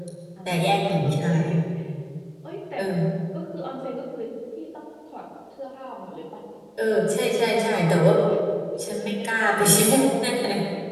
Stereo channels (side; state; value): both; identical; correlation 1.00